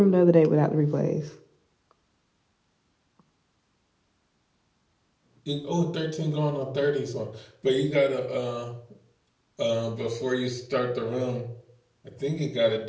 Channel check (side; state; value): both; identical; correlation 1.00